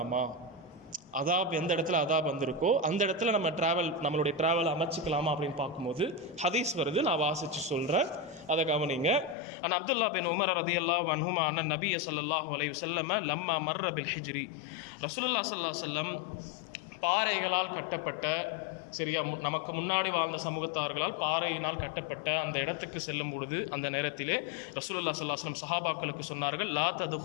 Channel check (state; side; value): drops out; right; at 9.3 s